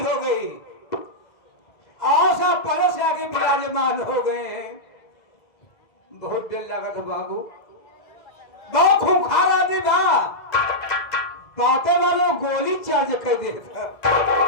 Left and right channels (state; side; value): late; right; 2.0 ms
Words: गई, आशा परस आगे विराजमान हो गए हैं। बहुत देर लगा था बाबू, बहुत खूंखार आदमी बा, बातें वालों गोली चार्ज कर दे था।